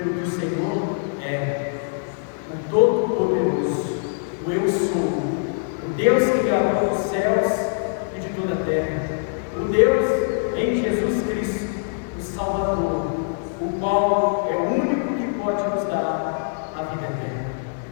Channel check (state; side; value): silent; right; 63 dB below the other